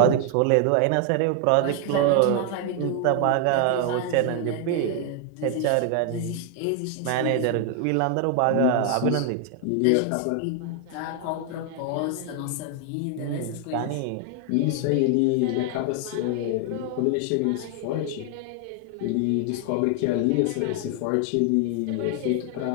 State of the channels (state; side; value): different; both; correlation 0.00